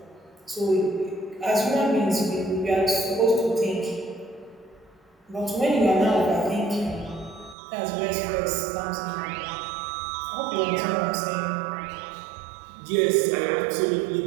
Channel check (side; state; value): left; drops out; at 7.6 s